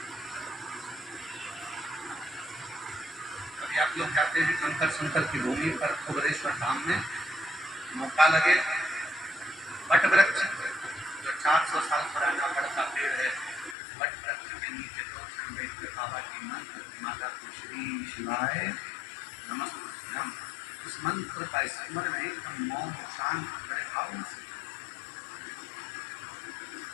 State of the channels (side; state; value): right; drops out; at 13.8 s